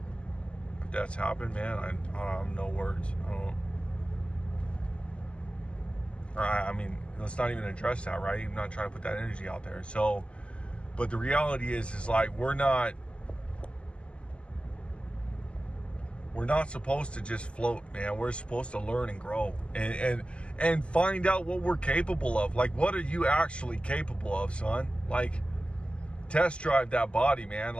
happened, man, I don't have no words. I mean, let's not even address that, right? I'm not trying to put that energy out there. So, but the reality is like, we're not supposed to just float, man. We're supposed to learn and grow and find out what we're capable of. Like, what are you actually capable of, son? Like, test drive that body, man.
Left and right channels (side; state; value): right; late; 0.058 ms